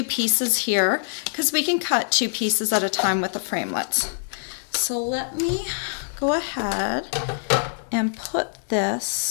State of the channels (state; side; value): silent; right; 62 dB below the other